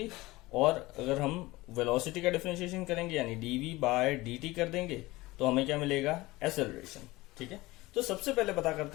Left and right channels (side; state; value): right; quieter; 20.1 dB